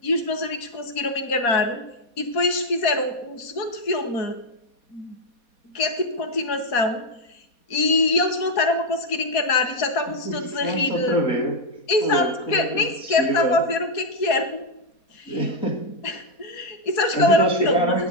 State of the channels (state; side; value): late; right; 4.2 ms